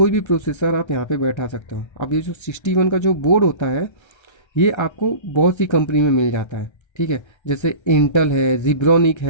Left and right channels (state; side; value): late; right; 1.3 ms